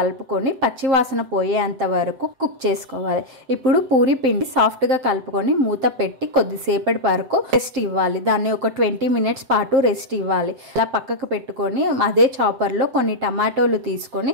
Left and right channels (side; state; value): left; late; 7.7 ms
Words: పచ్చివాసన పోయేంత వరకు కుక్ చేసుకోవాలి. ఇప్పుడు పూరి పిండి సాఫ్ట్గా కలుపుకొని మూత పెట్టి కొద్దిసేపటి వరకు రెస్ట్ ఇవ్వాలి. దాన్ని ఒక 20 మినిట్స్ పాటు రెస్ట్ ఇవ్వాలి. అలా పక్కకు పెట్టుకొని అదే చాపర్లో కొన్ని టమాటోలు